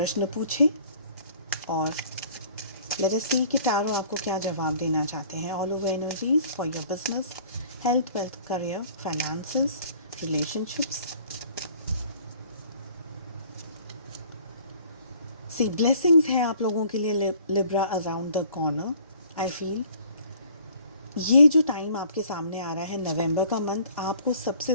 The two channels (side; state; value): both; inverted; correlation -0.54